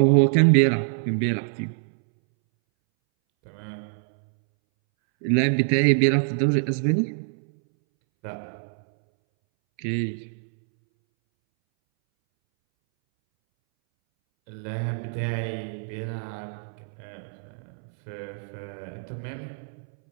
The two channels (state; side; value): silent; left; 62 dB below the other